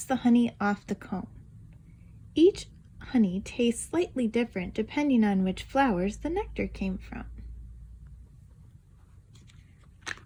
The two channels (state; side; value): identical; both; correlation 1.00